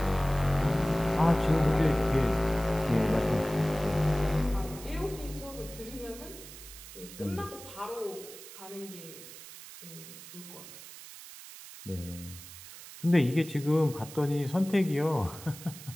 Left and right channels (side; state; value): right; noise; hiss, 15 dB below the sound